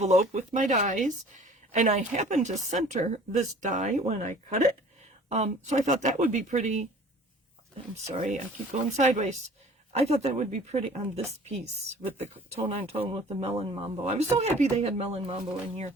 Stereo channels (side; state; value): both; normal; correlation 0.48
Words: with my dies. And I happened to center this die when I cut it. So I thought that would be pretty. I'm sorry, I keep going sideways. I thought that would be pretty on this piece with the tone on tone with the Melon Mambo. I was so happy they had Melon Mambo in here.